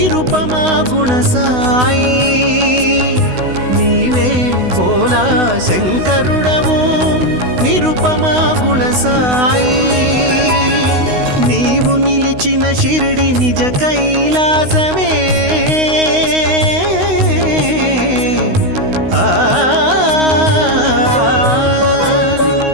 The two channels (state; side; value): late; left; 16 ms